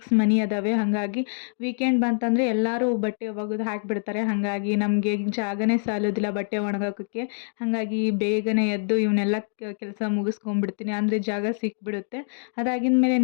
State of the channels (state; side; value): silent; right; digital silence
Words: ಮನೆ ಅದಾವೆ. ಹಾಗಾಗಿ ವೀಕೆಂಡ್ ಬಂತಂದರೆ ಎಲ್ಲರೂ ಬಟ್ಟೆ ಒಗೆದು ಹಾಕಿಬಿಡ್ತಾರೆ. ಹಾಗಾಗಿ ನಮಗೆ ಜಾಗನೇ ಸಾಲೋದಿಲ್ಲ ಬಟ್ಟೆ ಒಣಗಾಕೋಕ್ಕೆ. ಹಾಗಾಗಿ ಬೇಗನೆ ಎದ್ದು ಇವನ್ನೆಲ್ಲ ಕೆಲಸ ಮುಗಿಸ್ಕೊಂಡ್ಬಿಡ್ತೀನಿ, ಅಂದರೆ ಜಾಗ ಸಿಕ್ಬಿಡುತ್ತೆ. ಅದಾಗಿದ ಮೇಲೆ